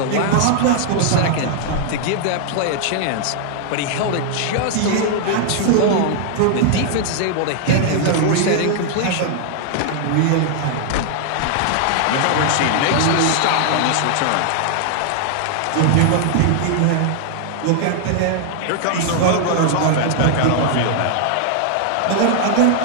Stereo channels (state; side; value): different; both; correlation 0.00